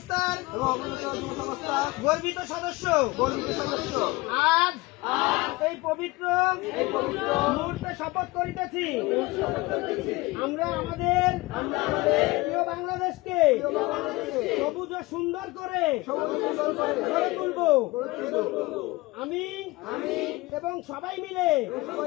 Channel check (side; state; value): right; quieter; 21.9 dB